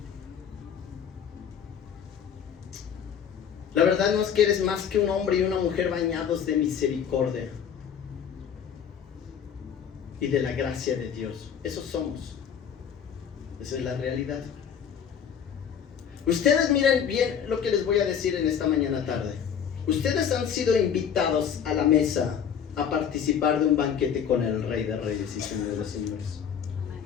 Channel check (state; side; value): quieter; right; 8.0 dB